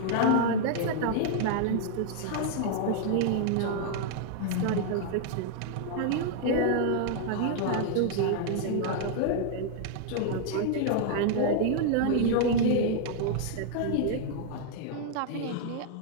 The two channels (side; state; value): both; different; correlation -0.01